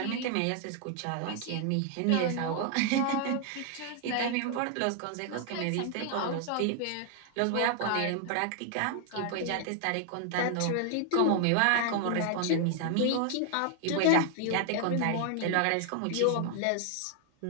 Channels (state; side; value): different; both; correlation 0.00